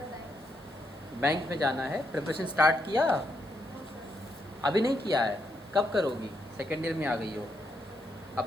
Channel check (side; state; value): left; noise; hiss, 29 dB below the sound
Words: बैंक में जाना है। प्रिपरेशन स्टार्ट किया? अभी नहीं किया है, कब करोगी? सेकेंड ईयर में आ गई हो,